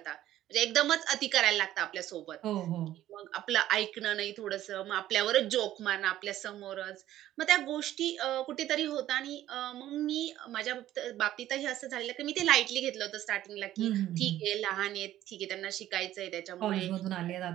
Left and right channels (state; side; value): quieter; left; 13.3 dB